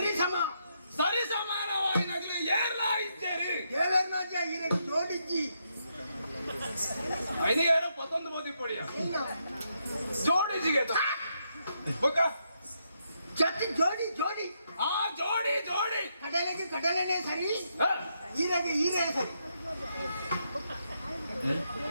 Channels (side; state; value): both; inverted; correlation -0.79